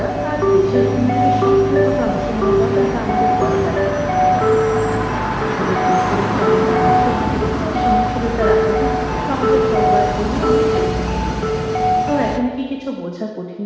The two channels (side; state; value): both; identical; correlation 1.00